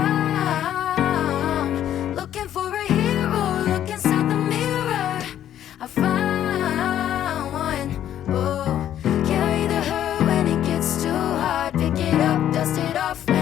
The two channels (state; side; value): quieter; right; 11.0 dB